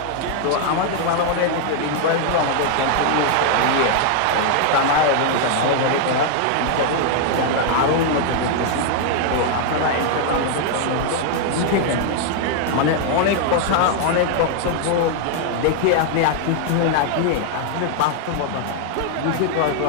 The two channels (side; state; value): both; different; correlation 0.00